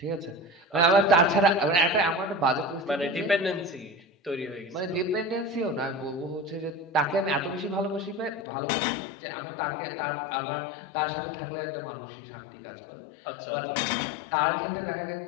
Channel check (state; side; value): drops out; right; at 8.5 s